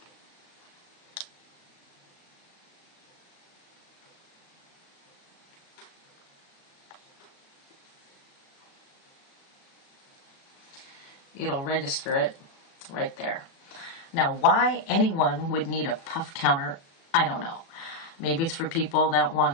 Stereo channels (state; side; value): late; right; 36 ms